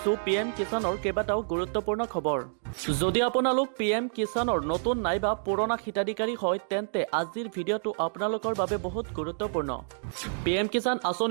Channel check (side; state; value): left; silent; digital silence